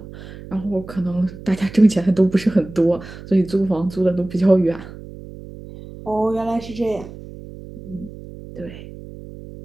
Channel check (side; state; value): right; noise; hum, 15 dB below the sound